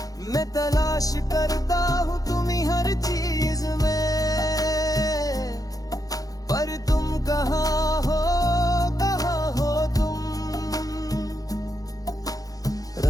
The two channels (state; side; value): late; right; 0.17 ms